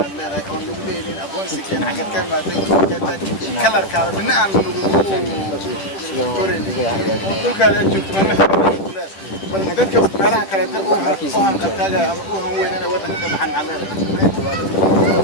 aan leedahay oo nagu leeyahay aqoonsi keen xagad ka imaaday oo keentay kalarkaada midna aan nagu korin oo dhulkaada joogto ma bal dadka meelaha kale oo aan qabtaaga ama oo han weyn inay waddanka ka baxaan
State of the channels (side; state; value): right; late; 10 ms